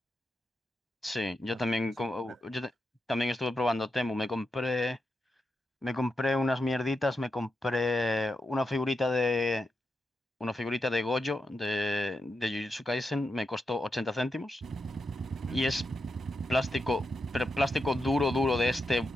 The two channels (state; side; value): normal; both; correlation 0.86